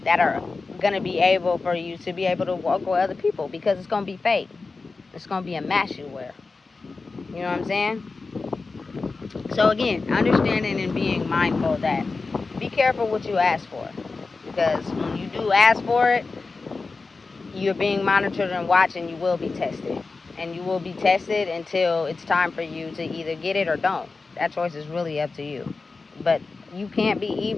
that are going to be able for you to be able to work with other people, because it's going to be fake. It's going to be a mask you wear. You know what I'm saying? So again, understanding and being mindful that be careful what you ask for, because when you do ask for it, you're being monitored and watched, and you will be tested. And you will be tested until it's time for you to either get it or don't. That choice is really up to you. But you can't be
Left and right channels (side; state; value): right; quieter; 4.0 dB